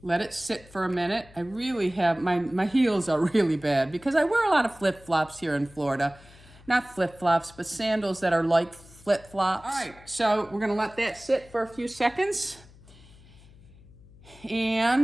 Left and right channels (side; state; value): left; noise; hum, 23 dB below the sound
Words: Let it sit for a minute. I really have, my heels are really bad because I wear a lot of flip-flops here in Florida. Not flip-flops, but sandals that are like flip-flops. All right, so we're gonna let that sit for a few seconds.